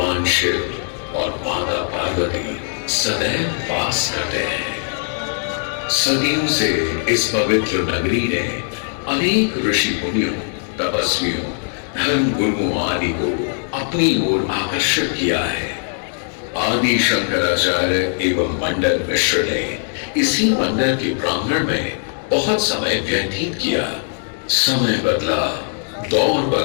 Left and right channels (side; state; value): right; silent; 61 dB below the other